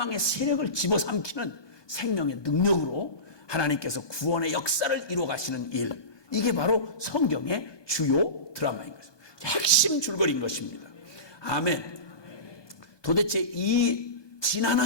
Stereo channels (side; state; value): right; late; 1.2 ms